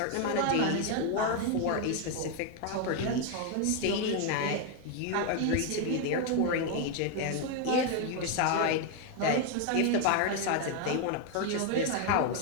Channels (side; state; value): both; different; correlation 0.01